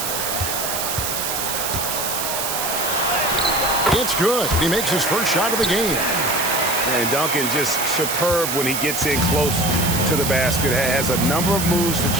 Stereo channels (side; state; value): right; noise; hiss, 2 dB below the sound